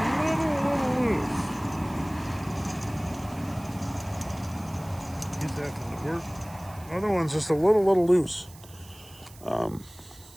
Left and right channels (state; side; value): noise; right; hiss, 22 dB below the sound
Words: little loose. He's having to work. The other one's just a little loose.